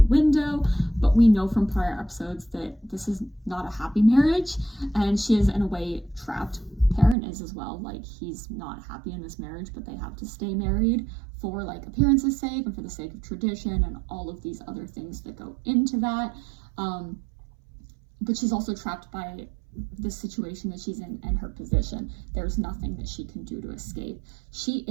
window, but we know from prior episodes that this is not a happy marriage, and she is in a way trapped. Perrin is as well. He's not happy in this marriage, but they have to stay married for appearance's sake and for the sake of tradition and all of these other things that go into that. But she's also trapped by the situation that she's in and her position. There's nothing that she can do to escape. She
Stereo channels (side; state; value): left; drops out; at 7.2 s